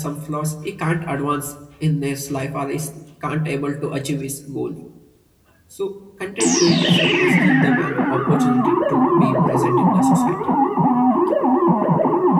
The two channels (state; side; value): identical; both; correlation 1.00